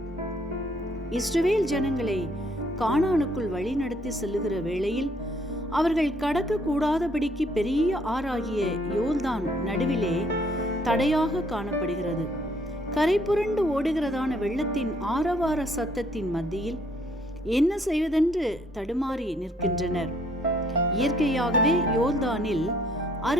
இஸ்ரவேல் ஜனங்களை கானானுக்குள் வழிநடத்தி செல்லுகிற வேளையில் அவர்கள் கடக்க கூடாதபடிக்கு பெரிய ஆறாகிய யோர்தான் நடுவிலே தடையாக காணப்படுகிறது. கரை புரண்டு ஓடுகிறதான வெள்ளத்தின் ஆரவார சத்தத்தின் மத்தியில் என்ன செய்வதென்று தடுமாறி நிற்கின்றனர். இயற்கையாகவே யோர்தானில்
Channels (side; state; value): both; normal; correlation 0.65